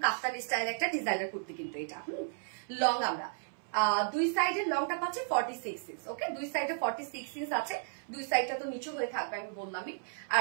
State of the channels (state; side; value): silent; left; 55 dB below the other